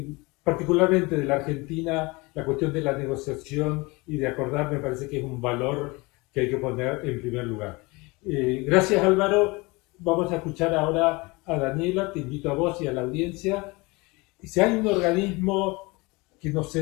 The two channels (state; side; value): quieter; right; 24.9 dB